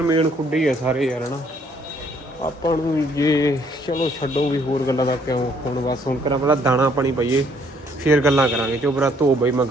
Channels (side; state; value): both; normal; correlation 0.66